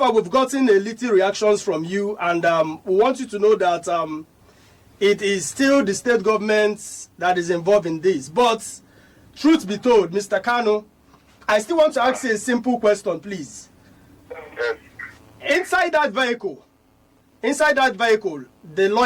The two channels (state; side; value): identical; both; correlation 1.00